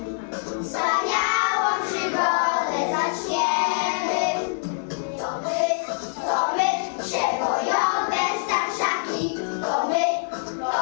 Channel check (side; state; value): right; silent; 62 dB below the other